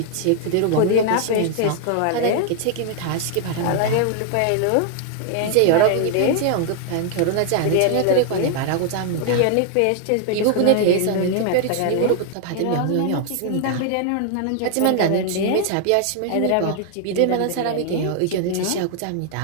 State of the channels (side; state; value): both; different; correlation 0.00